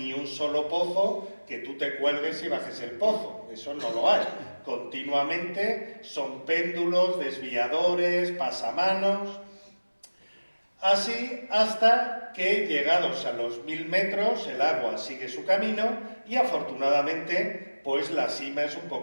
un solo pozo que tú te cuelgues y bajes el pozo, eso no lo hay. Continuamente son péndulos, desviadores, pasamanos, así hasta que llegados a los 1000 metros el agua sigue su camino y afortunadamente pues la sima es un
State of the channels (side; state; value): both; inverted; correlation -1.00